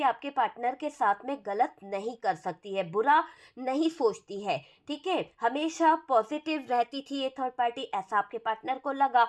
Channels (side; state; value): both; identical; correlation 1.00